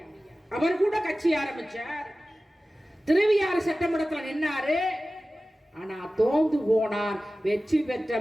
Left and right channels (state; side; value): normal; both; correlation 0.96